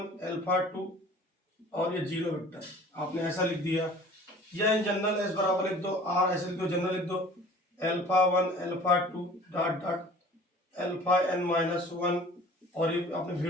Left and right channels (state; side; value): normal; both; correlation 0.47